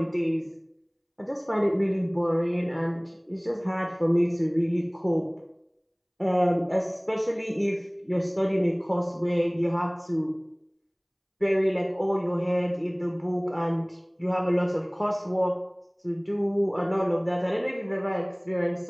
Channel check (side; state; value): both; identical; correlation 1.00